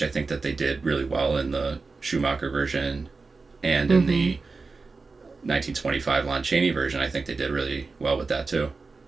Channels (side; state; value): left; quieter; 4.1 dB